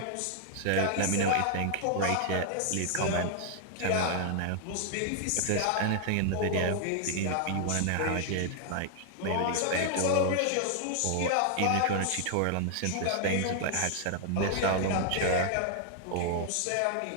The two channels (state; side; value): different; both; correlation 0.00